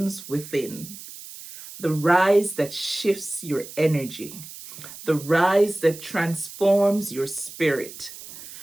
within. The rise that shifts your energy. The rise that transforms your spirit.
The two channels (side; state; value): right; noise; hiss, 14 dB below the sound